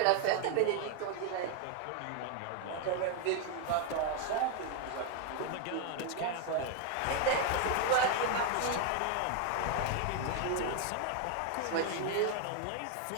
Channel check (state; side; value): different; both; correlation 0.01